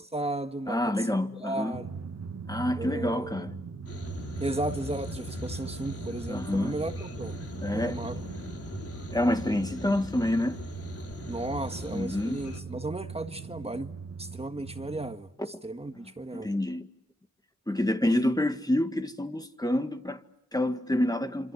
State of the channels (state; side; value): normal; both; correlation 0.80